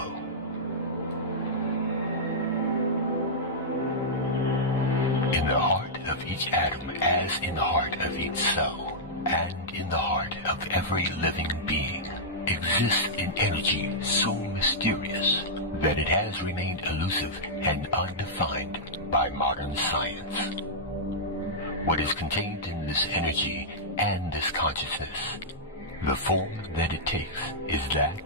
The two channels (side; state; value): both; normal; correlation -0.11